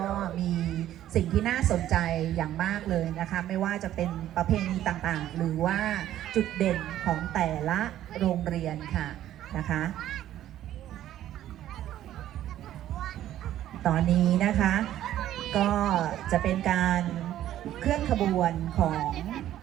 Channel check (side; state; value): left; quieter; 12.5 dB